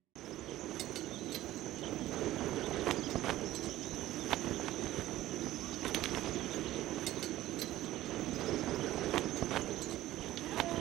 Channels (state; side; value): quieter; left; 15.1 dB